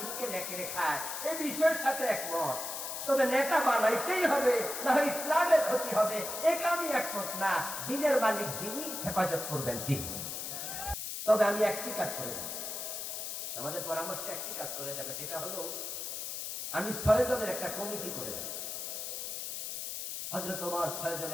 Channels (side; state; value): left; noise; hiss, 5 dB below the sound